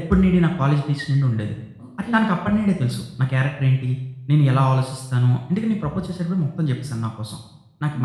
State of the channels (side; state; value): both; identical; correlation 1.00